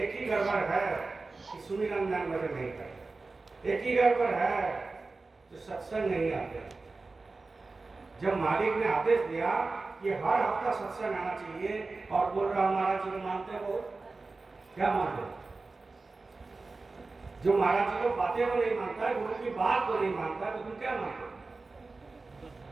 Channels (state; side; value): quieter; left; 3.7 dB